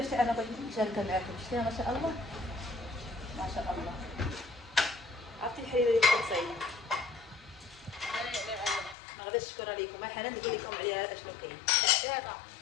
انا بغيت نشاركها معاكم. شتيها ما شاء الله ما شاء الله. عرفتي الحريره اللي كتصايب ما غاديش نشكرها لكم. حنان نقول لكم عليها اشنو كاين.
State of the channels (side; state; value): right; drops out; at 9.0 s